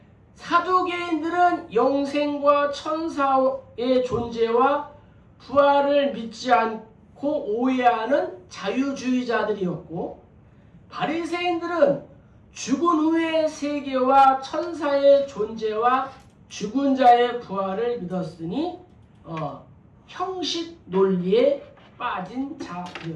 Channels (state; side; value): identical; both; correlation 1.00